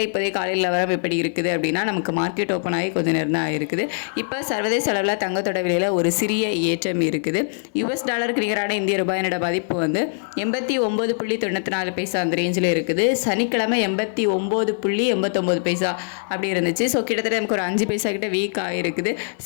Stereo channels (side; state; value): right; silent; 64 dB below the other